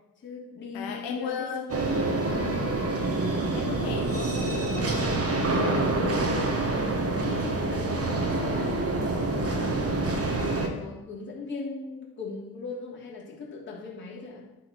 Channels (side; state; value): both; normal; correlation 0.20